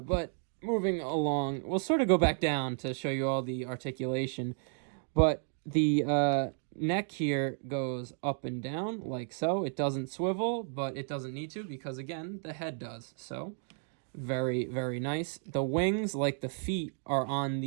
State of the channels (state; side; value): silent; left; 56 dB below the other